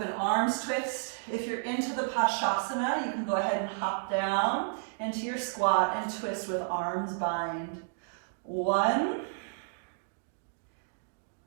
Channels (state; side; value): silent; left; digital silence